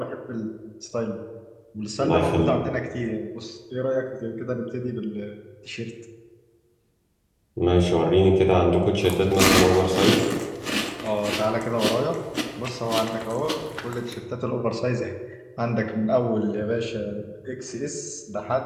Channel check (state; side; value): identical; both; correlation 1.00